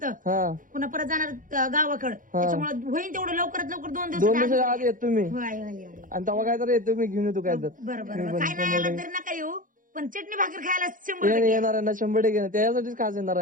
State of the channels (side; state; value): left; late; 0.39 ms